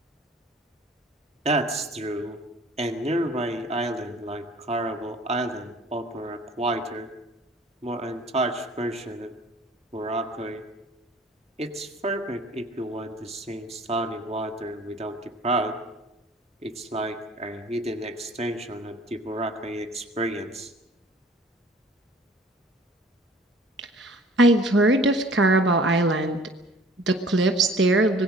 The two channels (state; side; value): normal; both; correlation 0.50